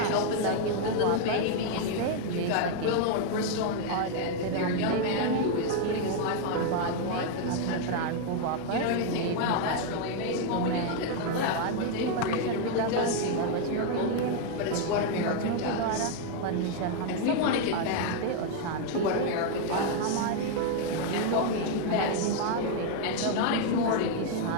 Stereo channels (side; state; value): both; different; correlation 0.00